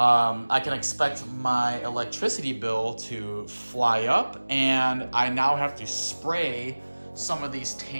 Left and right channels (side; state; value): both; inverted; correlation -1.00